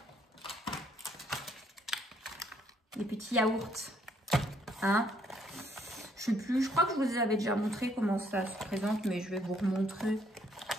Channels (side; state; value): both; normal; correlation 0.68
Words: Les petits yaourts. Je sais plus, je crois que je vous avais déjà montré comment ça se présente, mais je vais vous remontrer.